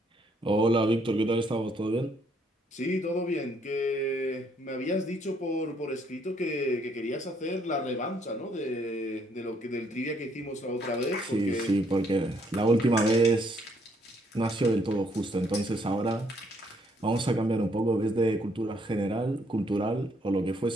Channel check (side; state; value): both; normal; correlation 0.69